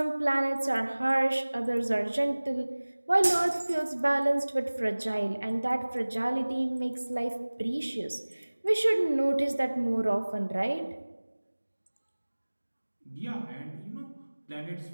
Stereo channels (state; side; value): inverted; both; correlation -1.00